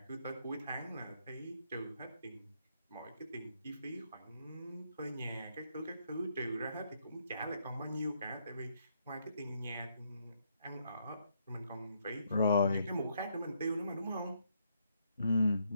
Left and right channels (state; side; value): inverted; both; correlation -0.74